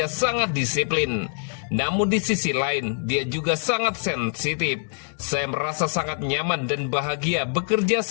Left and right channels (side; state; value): right; silent; digital silence